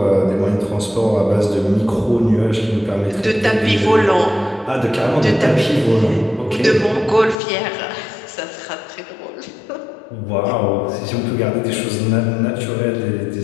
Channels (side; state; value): right; drops out; at 7.4 s